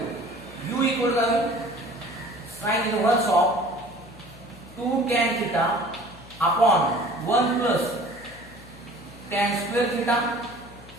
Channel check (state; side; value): noise; left; hum, 20 dB below the sound